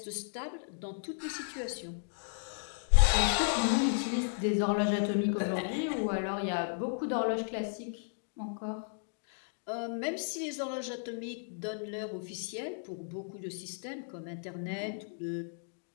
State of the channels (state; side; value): silent; right; digital silence